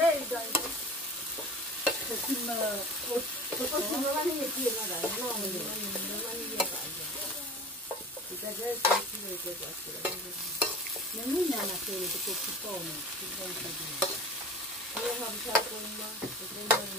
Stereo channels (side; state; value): both; normal; correlation 0.38